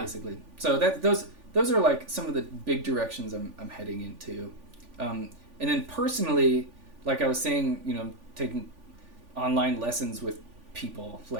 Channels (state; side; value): late; left; 3.5 ms